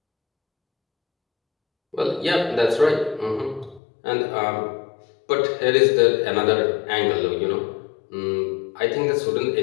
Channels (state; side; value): drops out; right; at 3.8 s